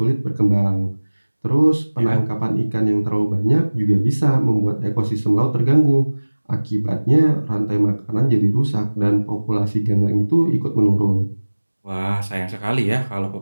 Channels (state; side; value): inverted; both; correlation -1.00